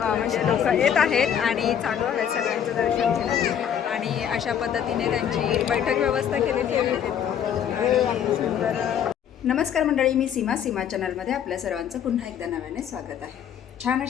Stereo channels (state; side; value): quieter; right; 9.0 dB